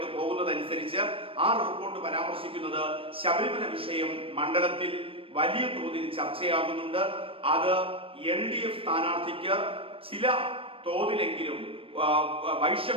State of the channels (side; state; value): left; late; 0.27 ms